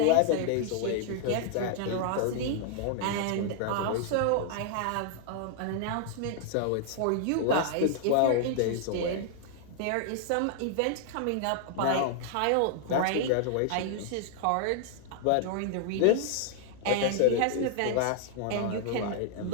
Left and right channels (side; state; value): both; different; correlation -0.01